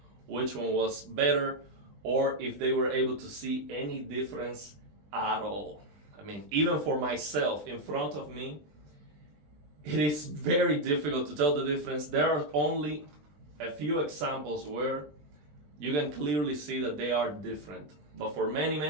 which one was better or if they were able to see any difference at all. I mean, even for myself in front of me, it is very difficult to tell the difference. There are only a few examples where you can clearly see that they are different. But for many,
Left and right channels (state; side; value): late; left; 20 ms